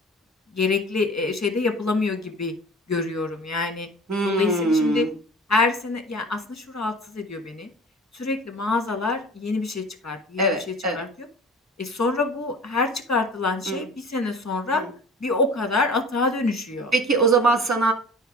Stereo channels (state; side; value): normal; both; correlation 0.41